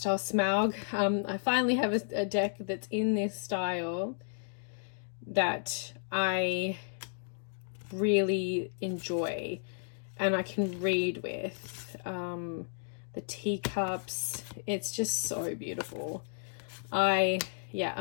style Smaug. I finally have a deck that's in this style that I really enjoy and I can read with. The teacups, it's just so beautiful.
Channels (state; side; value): silent; right; digital silence